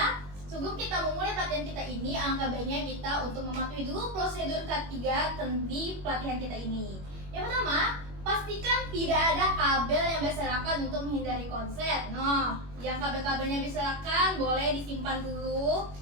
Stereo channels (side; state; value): left; late; 21 ms